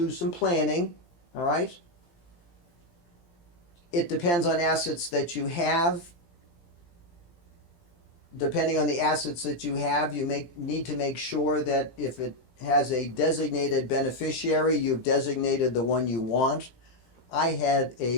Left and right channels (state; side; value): late; right; 17 ms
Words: some planning, all right? It depends on assets that you have. Depending on the assets that you have, you need to make sure that if it has a designated beneficiary, you've designated the one you want. I had